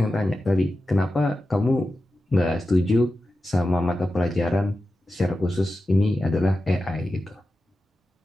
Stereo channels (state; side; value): normal; both; correlation 0.92